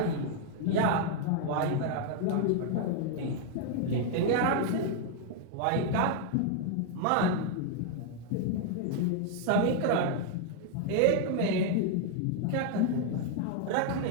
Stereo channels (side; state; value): both; different; correlation 0.00